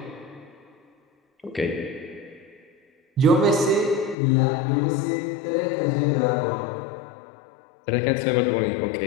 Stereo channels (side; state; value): right; drops out; at 4.2 s